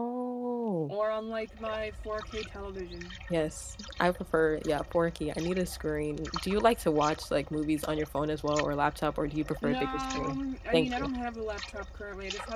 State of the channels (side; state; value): both; identical; correlation 1.00